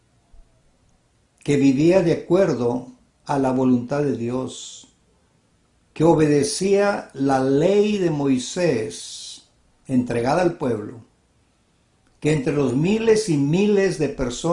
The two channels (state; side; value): identical; both; correlation 1.00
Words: que vivía de acuerdo a la voluntad de Dios, que obedecía la ley de Moisés entregada al pueblo, que entre los miles y miles de